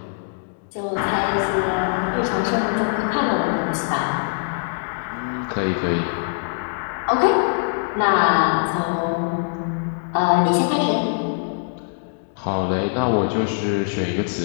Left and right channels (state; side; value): silent; right; digital silence